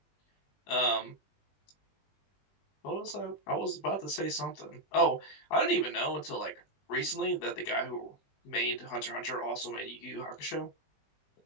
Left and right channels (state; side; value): late; right; 20 ms